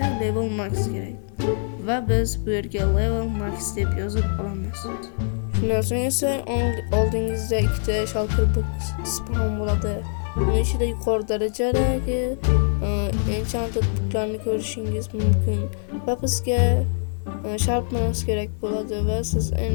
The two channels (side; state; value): right; silent; digital silence